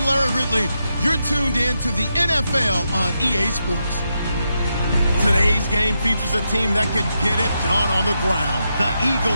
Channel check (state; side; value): inverted; both; correlation -0.84